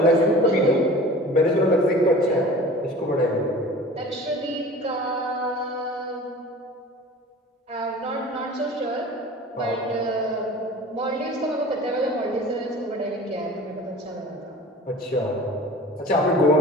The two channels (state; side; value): normal; both; correlation 0.41